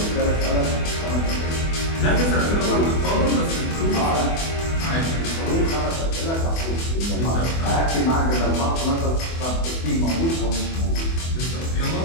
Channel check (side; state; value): right; late; 24 ms